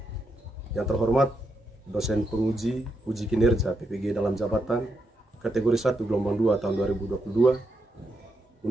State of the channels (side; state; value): both; normal; correlation 0.81